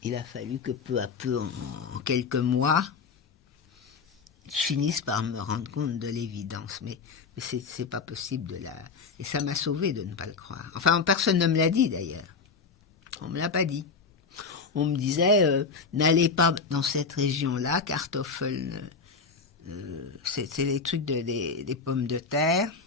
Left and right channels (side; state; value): right; quieter; 5.0 dB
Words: Il a fallu que peu à peu, en quelques mois, je finisse par me rendre compte de l'évidence. Mais c'est pas possible Et ça m'a sauvé de ne pas le croire. Enfin, personne ne me l'a dit d'ailleurs. On ne me l'a pas dit. On me disait, n'allez pas dans cette région-là, Kartoffeln, c'est les trucs des pommes de terre.